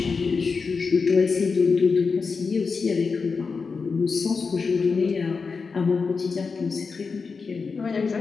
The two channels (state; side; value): quieter; right; 4.9 dB